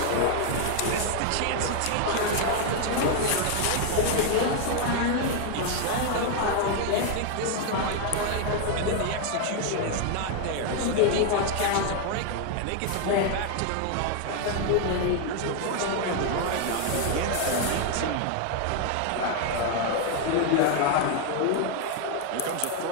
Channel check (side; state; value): both; different; correlation 0.00